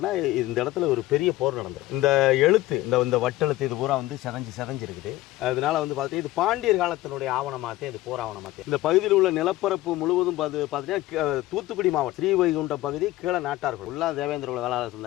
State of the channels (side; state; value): right; quieter; 16.8 dB